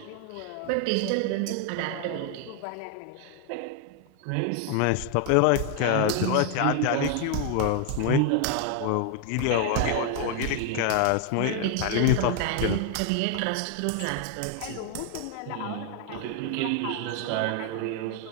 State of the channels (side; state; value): both; different; correlation 0.00